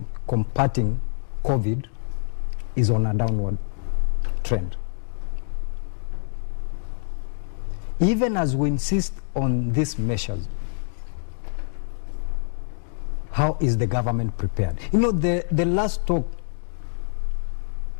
combating COVID is on a downward trend. Even as we insist on these measures, how is the government prepared? You know, the last talk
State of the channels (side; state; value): right; silent; digital silence